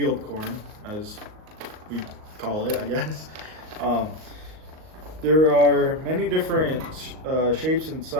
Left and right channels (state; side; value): late; left; 38 ms